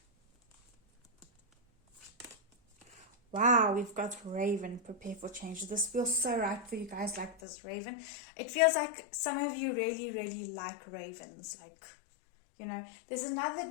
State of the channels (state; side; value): drops out; right; at 7.4 s